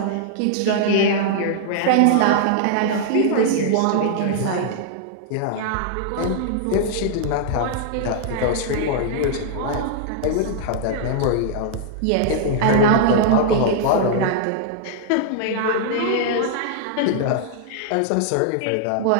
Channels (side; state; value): both; different; correlation -0.01